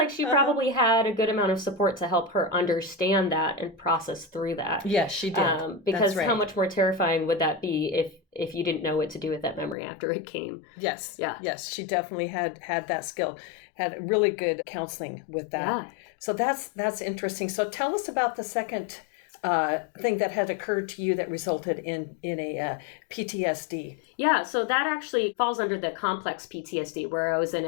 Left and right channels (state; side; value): drops out; right; at 9.8 s